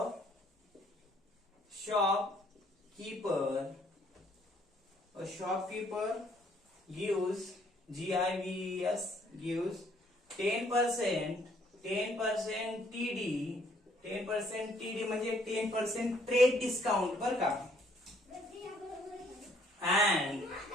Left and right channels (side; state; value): both; normal; correlation 0.64